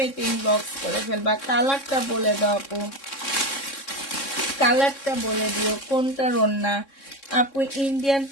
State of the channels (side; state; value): right; late; 3.6 ms